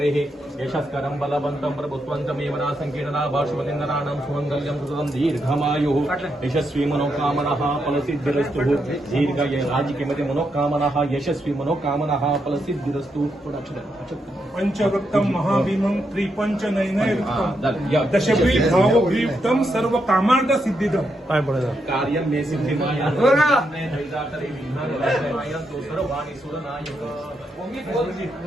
यशस्करं बलवन्तं प्रभुत्वन्तमेवना संकीर्णना भाषवलिन्दनानां सुमङ्गल्यं सुततं दीर्घमायुः यशस्वी मनोकामनाः फलसिद्धिरस्तु दीर्घ राजकीयमध्ये मनोकामनाः यशस्वी मनोकामनाः फलसिद्धिरस्तु. पंचवक्तं महाभीमं त्रिपंचनयनयुक्तं दशग्रीवभावग्रीवं सर्वकामार्थ सिद्धिदं. काय बोलायचं कार्यं मे सिद्धिमाया सर्वाणि सुरनायक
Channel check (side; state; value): both; normal; correlation 0.82